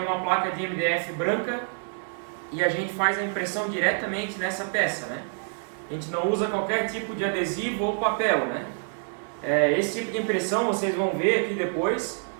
uma placa de MDF branca e a gente faz a impressão diretamente nessa peça, né? A gente não usa qualquer tipo de adesivo ou papel, né? Esse tipo de impressão vocês vão ver aqui depois,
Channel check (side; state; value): left; silent; digital silence